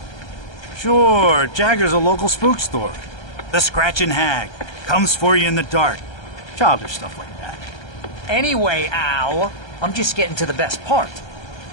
Sure, Jagger's a local spook story. The Scratching Hag. Comes for you in the dark. Childish stuff like that. Anyway, Al, I'm just getting to the best part.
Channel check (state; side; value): late; right; 1.3 ms